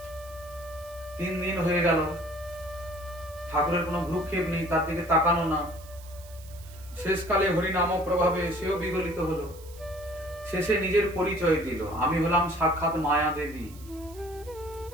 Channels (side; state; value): right; noise; hiss, 21 dB below the sound